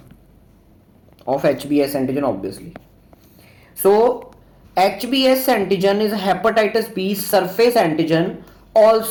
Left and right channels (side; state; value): both; identical; correlation 1.00